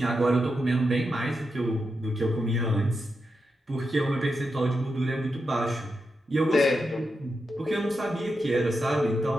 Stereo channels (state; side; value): normal; both; correlation 0.87